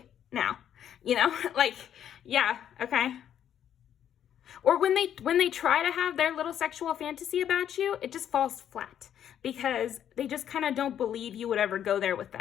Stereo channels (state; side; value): quieter; right; 9.9 dB